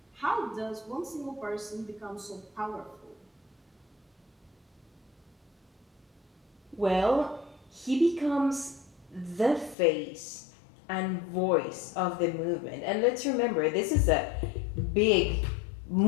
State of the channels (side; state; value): right; drops out; at 9.8 s